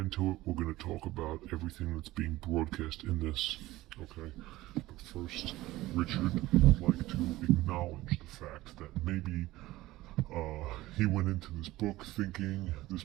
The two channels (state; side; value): quieter; left; 17.5 dB